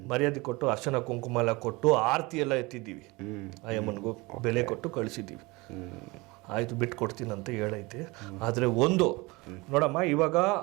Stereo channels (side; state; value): left; quieter; 24.0 dB